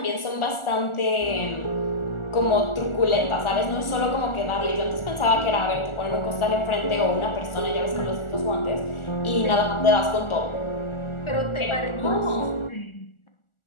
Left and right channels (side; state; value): right; late; 1.4 ms